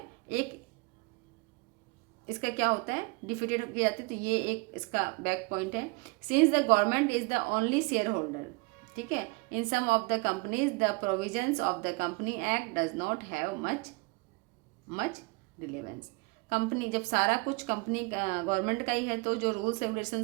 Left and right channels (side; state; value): left; quieter; 27.6 dB